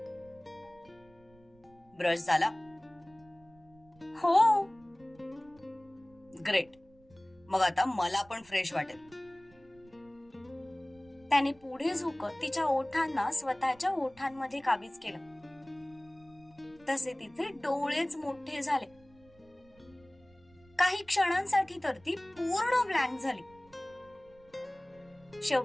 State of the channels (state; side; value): noise; right; rumble, 28 dB below the sound